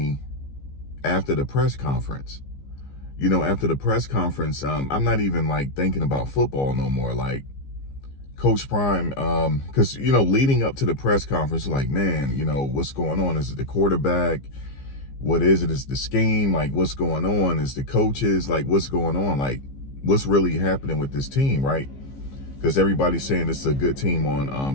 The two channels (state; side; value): late; right; 15 ms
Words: after the press conference. After the press conference, I'm not even like thinking about football no more. Like Coach Prime, because leading up to the press conference, like, man, what's going on? Is it the quarterback? What is it? Is the scheme? Like, what's going on? Is the coaches? Like, what's going on? Like, what's really happening with this team, right? Because everybody's saying it's a good team